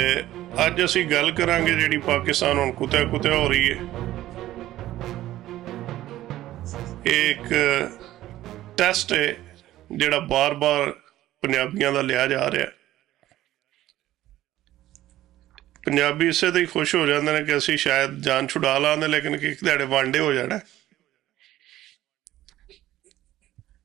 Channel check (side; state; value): left; quieter; 14.5 dB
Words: ਅੱਜ ਅਸੀਂ ਗੱਲ ਕਰਾਂਗੇ ਜਿਹੜੀ ਪਾਕਿਸਤਾਨ ਹੁਣ ਕੁੱਤਿਆ ਕੁੱਤਿਆ ਹੋ ਰਹੀ ਹੈ। ਇਹ ਇੱਕ ਟੈਸਟ ਹੈ ਜਿਹੜਾ ਬਾਰ-ਬਾਰ ਪੰਜਾਬੀਆਂ ਦਾ ਲਿਆ ਜਾ ਰਿਹਾ। ਪੰਜਾਬੀ ਇਸੇ ਤੇ ਹੀ ਖੁਸ਼ ਹੋ ਜਾਂਦੇ ਨੇ ਕਿ ਅਸੀਂ ਸ਼ਾਇਦ ਜਾਨ ਛੁਡਾ ਲਾਂਦੇ, ਲੇਕਿਨ ਇੱਕ ਦਿਹਾੜੇ ਵਾਂਡੇ ਹੋ ਜਾਣਾ,